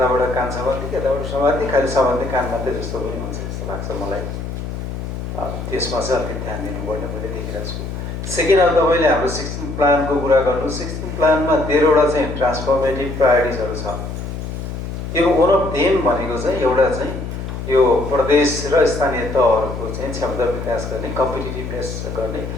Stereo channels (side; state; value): left; noise; hum, 6 dB below the sound